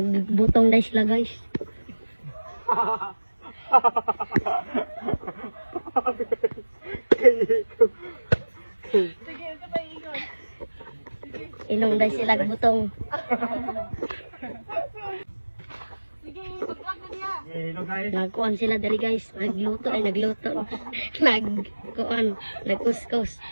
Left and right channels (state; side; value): inverted; both; correlation -1.00